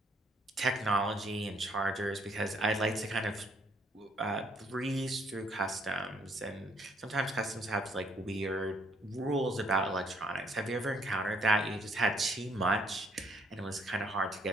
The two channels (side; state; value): both; normal; correlation 0.66